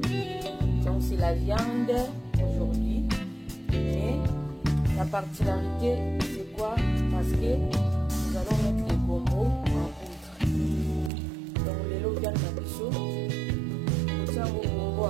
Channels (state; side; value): drops out; left; at 11.1 s